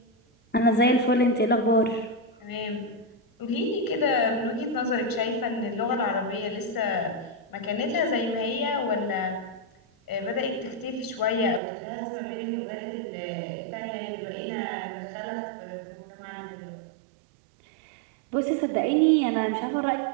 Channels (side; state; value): left; drops out; at 11.6 s